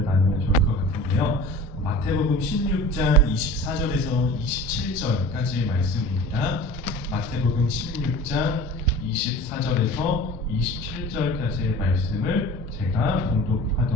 나누면 좋을 것 같은데요. 마태복음 16장 24절에서 27절까지의 말씀입니다. 마태복음 16장 24절에서 27절까지의 말씀을 제가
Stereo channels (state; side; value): normal; both; correlation 0.40